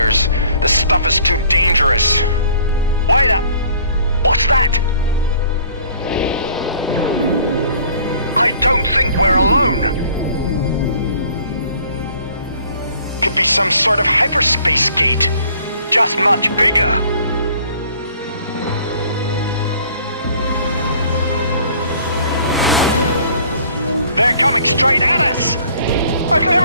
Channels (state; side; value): inverted; both; correlation -0.55